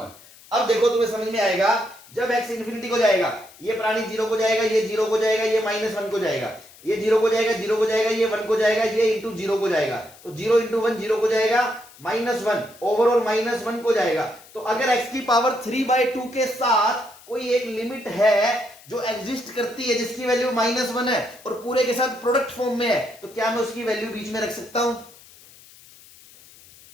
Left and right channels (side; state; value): left; noise; hiss, 23 dB below the sound